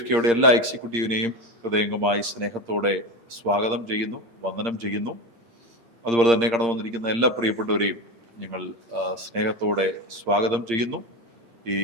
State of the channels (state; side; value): late; left; 8.7 ms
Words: എല്ലാ എക്സിക്യൂട്ടീവിനെയും ഹൃദയംഗമായി സ്നേഹത്തോടെ സ്വാഗതം ചെയ്യുന്നു, വന്ദനം ചെയ്യുന്നു. അതുപോലെ തന്നെ കടന്നു വന്നിരിക്കുന്ന എല്ലാ പ്രിയപ്പെട്ടവരെയും ഞങ്ങൾ സ്നേഹത്തോടെ സ്വാഗതം ചെയ്യുന്നു. ഈ